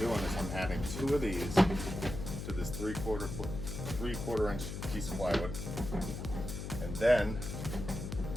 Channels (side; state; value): left; noise; hum, 6 dB below the sound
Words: is I'm adding 2 of these to this 3/4 inch piece of plywood, and then